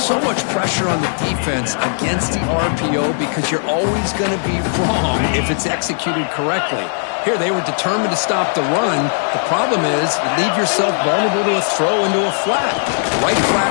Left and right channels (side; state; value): right; silent; 68 dB below the other